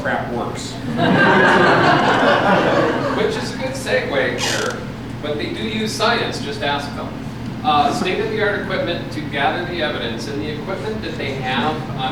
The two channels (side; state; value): both; identical; correlation 1.00